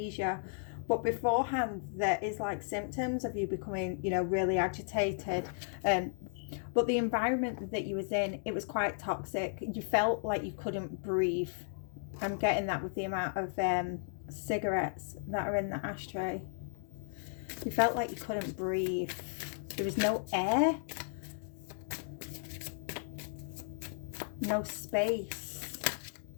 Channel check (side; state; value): right; silent; digital silence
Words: But beforehand there is like symptoms of you becoming, you know, really agitated. But the environment that you was in, it was quite toxic. You felt like you couldn't breathe. I'm getting that with the amount of cigarettes that are in the ashtray. You felt like you couldn't breathe. There was no air, no space.